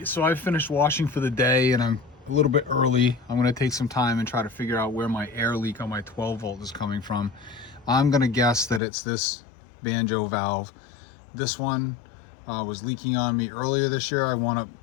so I've finished washing for the day and I'm a little bit early. I'm gonna take some time and try to figure out where my air leak on my 12 volt is coming from. I'm gonna guess that it's this Banjo valve. This one was leaking on me earlier this year. I wound up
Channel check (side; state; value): right; drops out; at 8.8 s